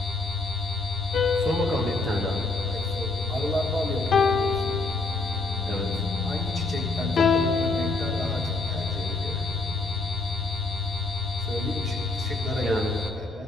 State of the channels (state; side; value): quieter; right; 3.3 dB